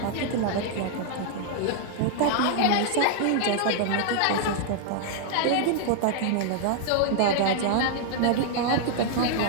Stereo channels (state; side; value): different; both; correlation 0.00